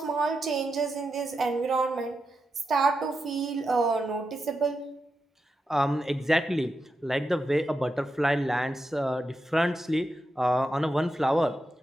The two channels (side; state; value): both; normal; correlation 0.87